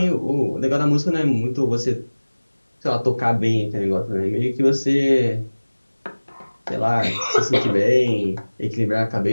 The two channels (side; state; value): both; inverted; correlation -1.00